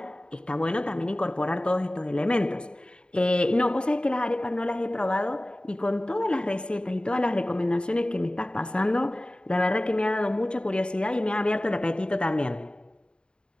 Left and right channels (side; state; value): right; late; 0.051 ms